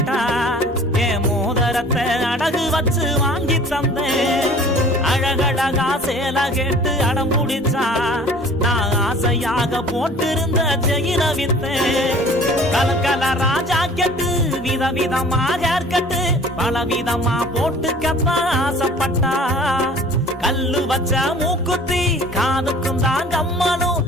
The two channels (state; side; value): normal; both; correlation 0.48